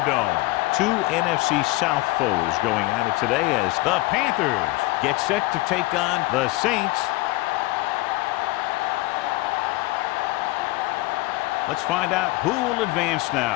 Two NFC South foes going at it today as the Panthers get set to take on the Saints. Let's find out who will advance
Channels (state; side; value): quieter; right; 20.6 dB